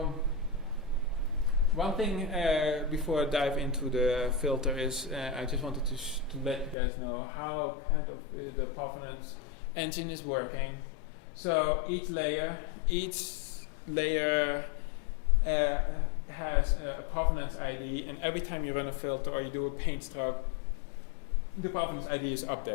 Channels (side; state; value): right; drops out; at 6.8 s